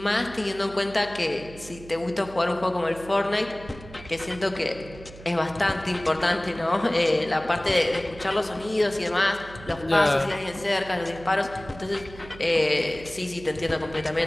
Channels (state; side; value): noise; right; hum, 17 dB below the sound